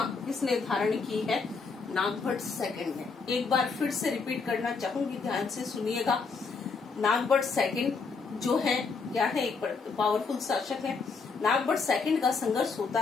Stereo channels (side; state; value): right; quieter; 4.7 dB